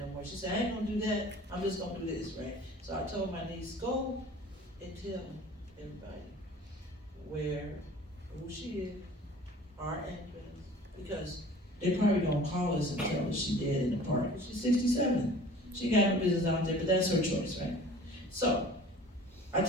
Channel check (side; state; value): both; normal; correlation 0.46